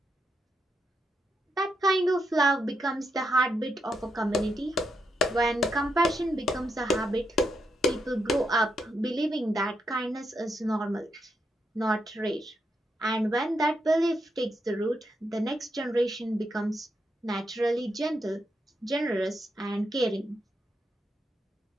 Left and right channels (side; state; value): both; normal; correlation 0.81